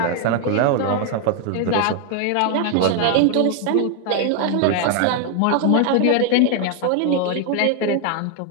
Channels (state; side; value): different; both; correlation 0.00